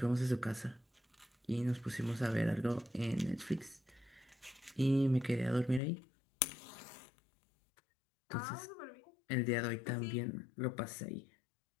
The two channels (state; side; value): drops out; right; at 5.8 s